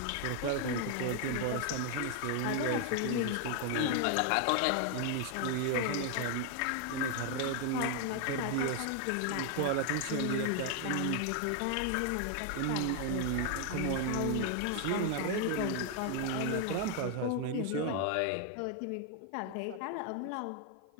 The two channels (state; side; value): different; both; correlation 0.00